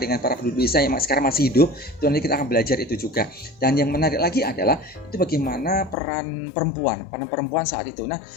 para penduduk desa yang sekarang masih hidup. Itu nanti kita akan belajar itu juga. Dan yang menarik lagi adalah itu bagaimana peran perempuan saat itu. Nah,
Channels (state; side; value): drops out; right; at 6.0 s